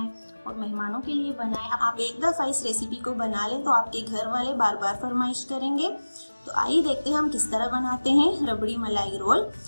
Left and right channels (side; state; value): both; inverted; correlation -1.00